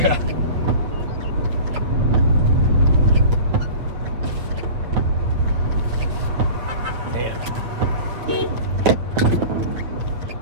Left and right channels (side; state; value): left; late; 8.6 ms